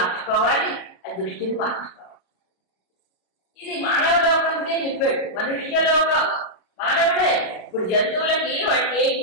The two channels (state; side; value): late; right; 33 ms